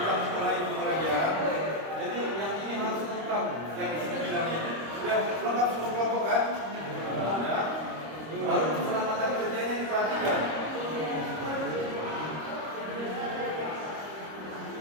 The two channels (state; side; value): late; left; 26 ms